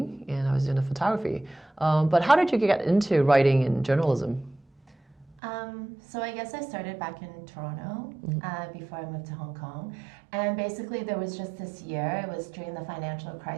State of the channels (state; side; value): drops out; left; at 5.4 s